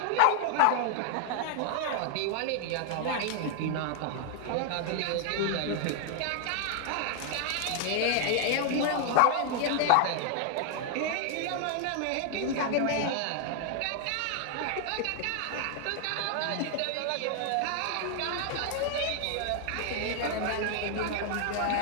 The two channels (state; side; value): different; both; correlation 0.00